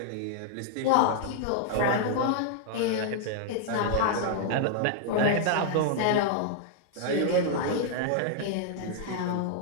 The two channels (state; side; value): different; both; correlation 0.00